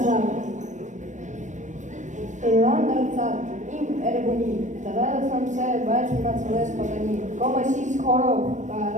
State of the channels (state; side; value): late; left; 0.35 ms